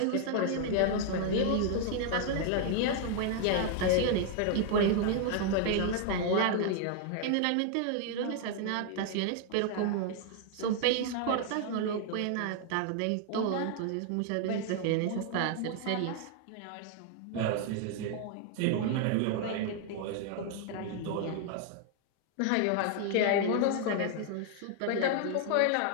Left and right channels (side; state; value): both; different; correlation 0.00